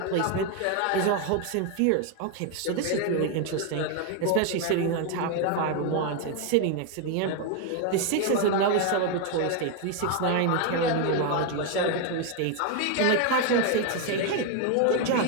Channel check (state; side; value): different; both; correlation 0.01